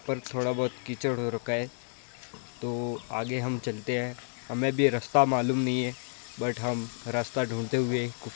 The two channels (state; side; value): silent; right; digital silence